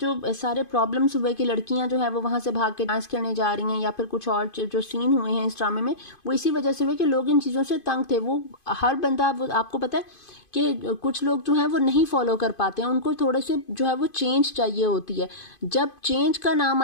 सारे प्रॉब्लम्स हुए कि लड़कियां जो है वो वहाँ से भाग के डांस करने जा रही हैं या फिर कुछ और जो सीन हुए हैं इस ड्रामे में, वो इसी वजह से हुए कि लोग इन चीज़ों से तंग थे। वो हर बंदा, वो आपको पता है कि कुछ लोग जो हैं वो नहीं फॉलो कर पाते हैं, उनको थोड़े से जो है वो चेंज चाहिए होती है। जब चेंज का नाम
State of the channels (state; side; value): late; right; 2.5 ms